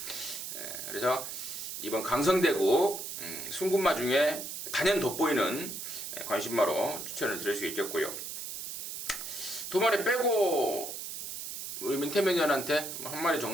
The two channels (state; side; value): noise; right; hiss, 7 dB below the sound